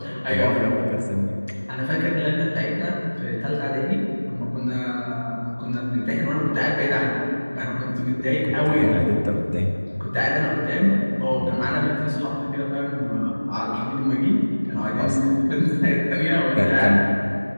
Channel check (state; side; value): inverted; both; correlation -1.00